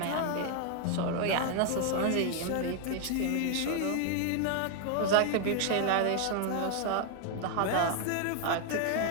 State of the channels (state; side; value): different; both; correlation 0.00